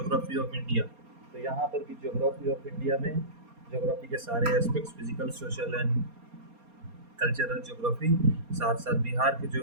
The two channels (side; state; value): left; late; 4.3 ms